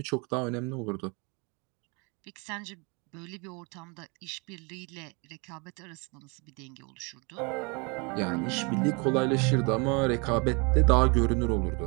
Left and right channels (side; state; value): left; quieter; 31.0 dB